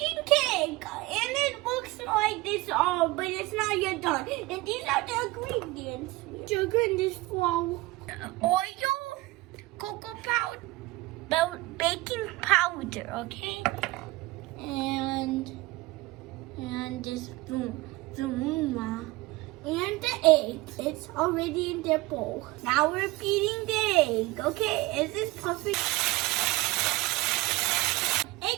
cake, and it looks like this all, but it's not yet done. And these are the ingredients: sugar in this flour, oil, cocoa powder, baking powder, okay, and this zumuma. And the egg, it's already in their bowl. Now we're beating the egg, okay? Is this perfect?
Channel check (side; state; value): left; quieter; 20.8 dB